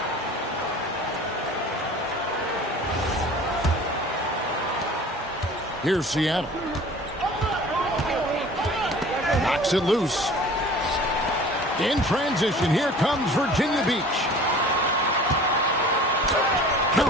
Here's Seattle. Knocks it loose. In transition, here comes Virginia Beach.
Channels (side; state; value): both; normal; correlation 0.44